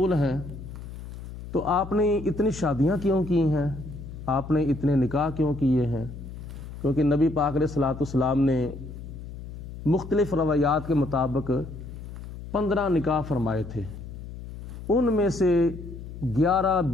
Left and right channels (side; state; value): left; noise; hum, 11 dB below the sound